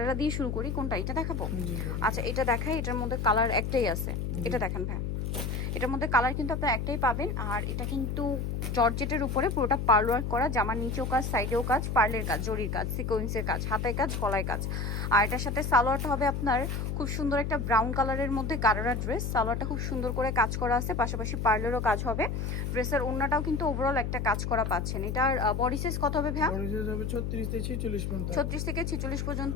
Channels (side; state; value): left; noise; hum, 2 dB below the sound